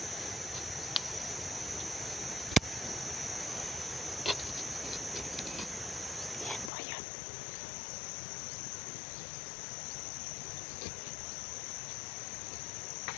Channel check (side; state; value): right; drops out; at 6.7 s